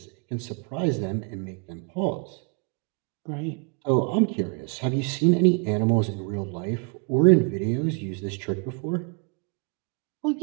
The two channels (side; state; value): left; quieter; 37.9 dB